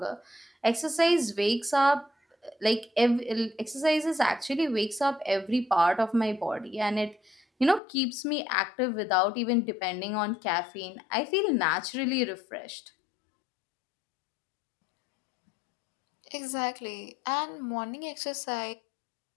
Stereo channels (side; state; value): right; drops out; at 7.8 s